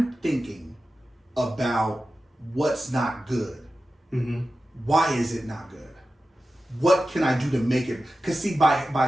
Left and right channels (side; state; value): both; normal; correlation 0.94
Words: thinking about what's not good, why is it not good? What can I do to make it? Because see, by